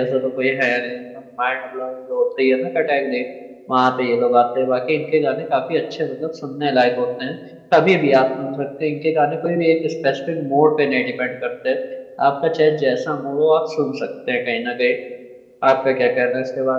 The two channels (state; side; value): identical; both; correlation 1.00